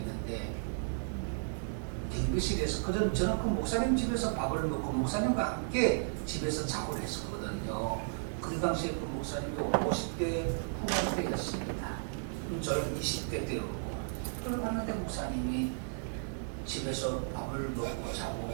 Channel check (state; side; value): silent; left; digital silence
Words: 갱비실에서 저는 그 목사님 집에서 밥을 먹고 목사님과 함께 집에서 작업을 했었거든요. 그 당시에 그 목사님이 50대 후반대였습니다. 저는 20대 때였고 그걸 봤는데 목사님이 집에서 밥을 먹고 자고